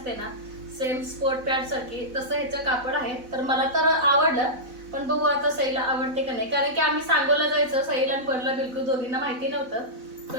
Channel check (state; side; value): late; left; 4.0 ms